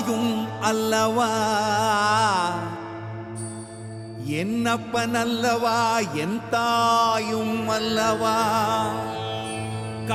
அல்லவா, என்னப்பன் அல்லவா என் தாயும் அல்லவா.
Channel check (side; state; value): both; identical; correlation 1.00